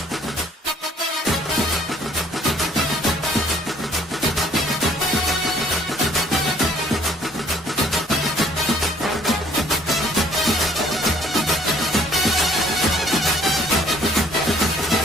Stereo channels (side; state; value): both; normal; correlation 0.59